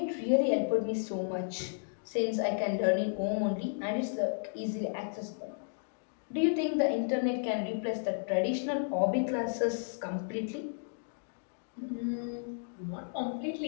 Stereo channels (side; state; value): right; silent; digital silence